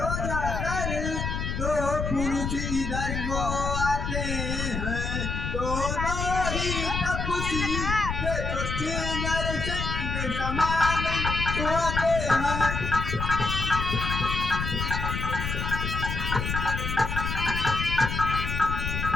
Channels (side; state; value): left; noise; rumble, 3 dB below the sound